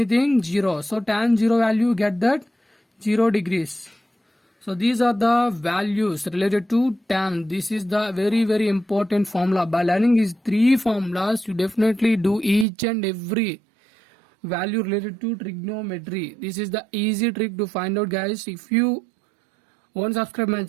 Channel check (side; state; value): left; drops out; at 12.7 s